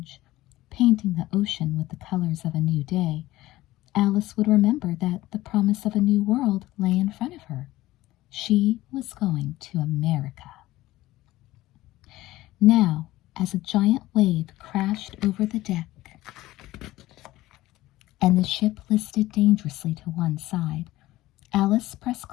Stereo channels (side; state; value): right; quieter; 16.9 dB